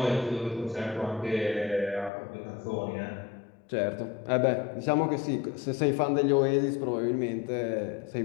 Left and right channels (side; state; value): right; drops out; at 2.1 s